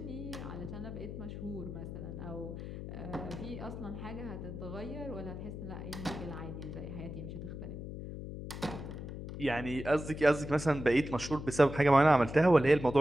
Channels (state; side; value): noise; left; hum, 8 dB below the sound